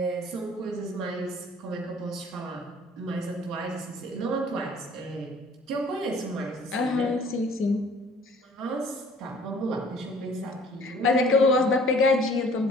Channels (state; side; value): normal; both; correlation 0.54